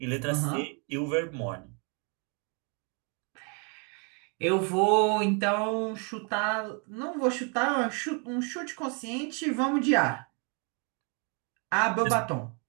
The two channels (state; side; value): quieter; left; 36.1 dB